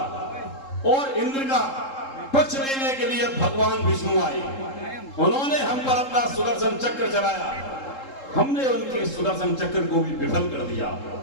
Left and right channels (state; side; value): late; right; 3.7 ms